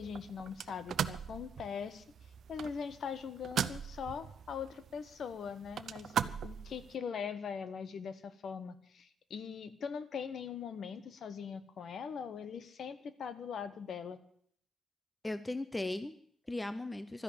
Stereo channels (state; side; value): normal; both; correlation 0.72